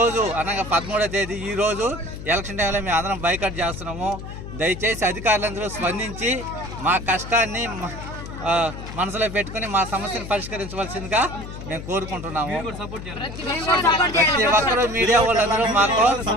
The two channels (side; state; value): left; noise; hum, 10 dB below the sound